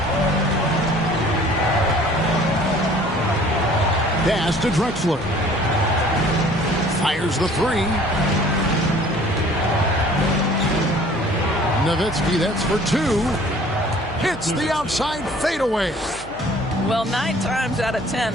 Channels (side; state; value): left; noise; hum, 20 dB below the sound